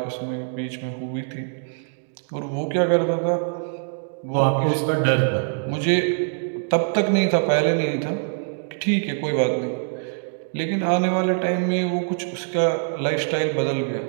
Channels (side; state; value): left; silent; digital silence